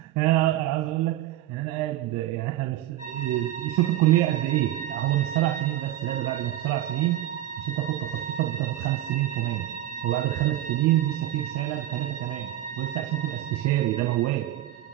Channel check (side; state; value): left; quieter; 13.4 dB